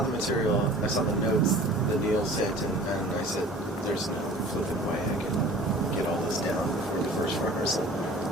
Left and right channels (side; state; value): both; normal; correlation 0.45